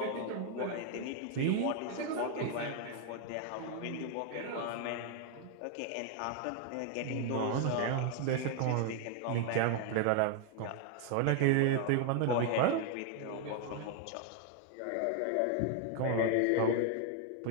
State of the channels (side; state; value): both; different; correlation 0.00